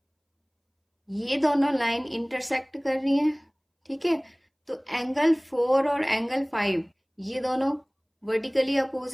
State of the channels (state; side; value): identical; both; correlation 1.00